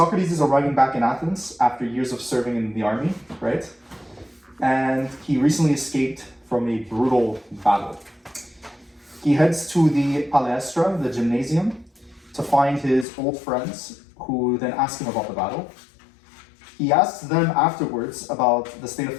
is arriving back in Athens after years of serving in the army, right? And he recently escaped from a brutal battle. He heads to the Palaestra, the gymnasium, to find his old friends, who then ask him about the battle. He asks them afterwards about the state of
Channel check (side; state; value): right; drops out; at 13.1 s